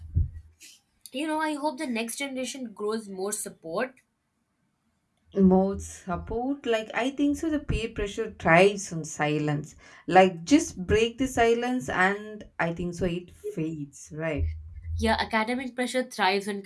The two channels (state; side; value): identical; both; correlation 1.00